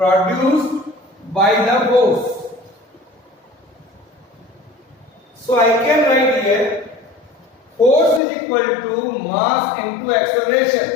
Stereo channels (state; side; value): drops out; right; at 8.2 s